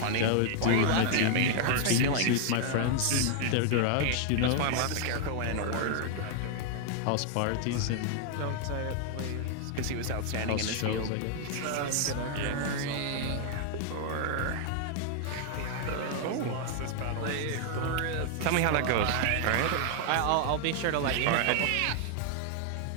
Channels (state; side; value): different; both; correlation 0.00